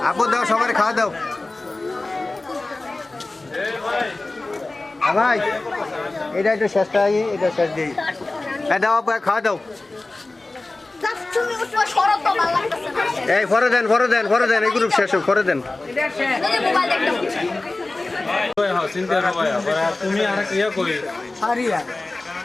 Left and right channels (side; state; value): right; quieter; 3.1 dB